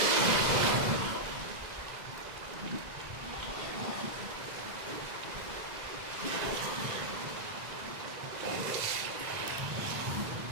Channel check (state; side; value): late; left; 1.9 ms